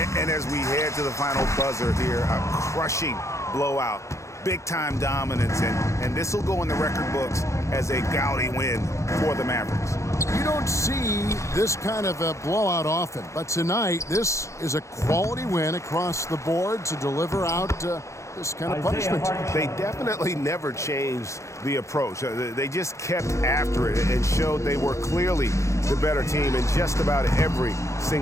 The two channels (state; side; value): late; right; 0.14 ms